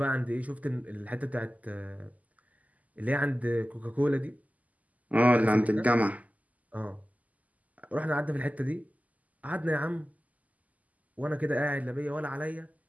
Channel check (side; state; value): left; late; 0.076 ms